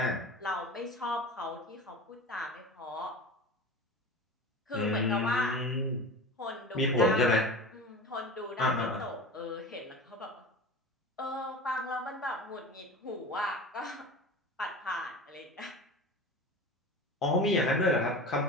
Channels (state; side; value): normal; both; correlation 0.32